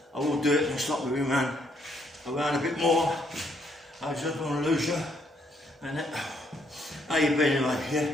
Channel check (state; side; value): normal; both; correlation 0.71